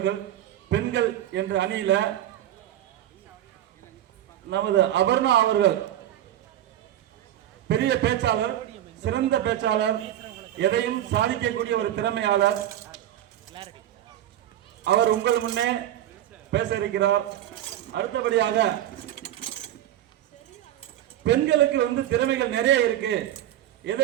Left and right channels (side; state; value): left; quieter; 12.4 dB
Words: பெண்கள் என்ற அணியில நமது அபர்ணா அவர்கள் பெரிய பேச்சாளர், சிறந்த பேச்சாளர், எதையும் சாதிக்கக்கூடிய ஒரு திறமையாளர். அவர் உங்கள் முன்னே பேச இருக்கிறார். அடுத்தபடியாக பெண்களுக்கு திறமைகள் நிறைய இருக்கு, எதை